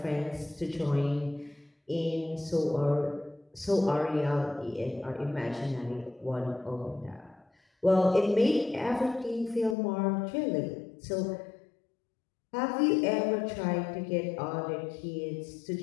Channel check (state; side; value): drops out; right; at 9.8 s